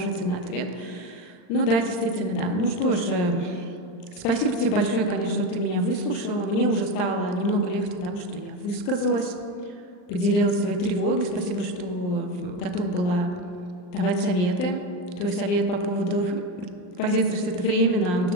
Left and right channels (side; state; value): right; late; 39 ms